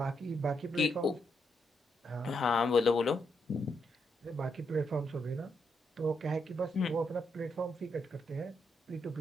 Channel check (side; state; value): both; normal; correlation 0.79